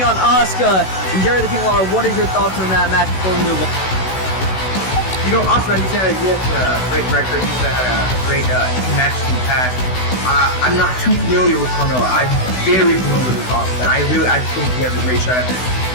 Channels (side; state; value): right; late; 16 ms